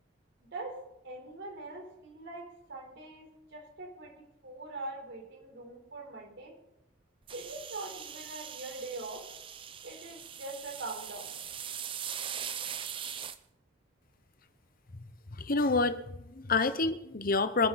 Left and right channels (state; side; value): normal; both; correlation -0.02